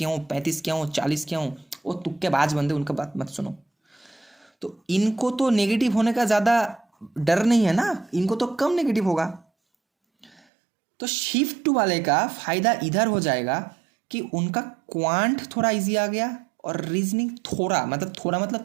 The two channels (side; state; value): left; drops out; at 10.4 s